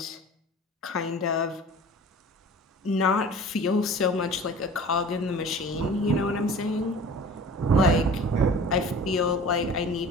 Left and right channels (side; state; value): both; normal; correlation 0.42